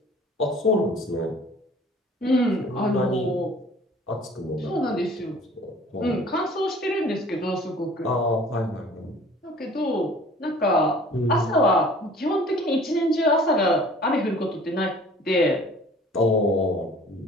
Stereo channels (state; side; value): normal; both; correlation 0.49